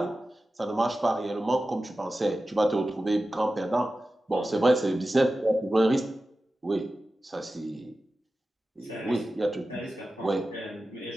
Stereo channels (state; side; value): normal; both; correlation 0.94